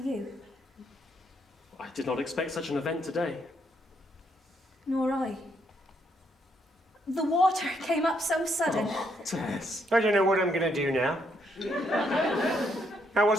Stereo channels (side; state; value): both; normal; correlation 0.74